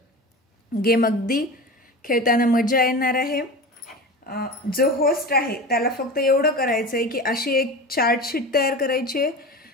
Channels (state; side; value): normal; both; correlation 0.30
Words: गेम। अगदी खेळताना मजा येणार आहे। जो होस्ट आहे त्याला फक्त एवढं करायचं आहे की अशी एक चार्ट शीट तयार करायची आहे,